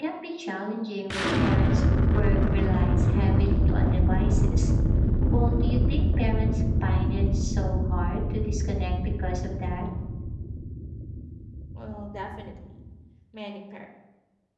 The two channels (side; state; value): both; identical; correlation 1.00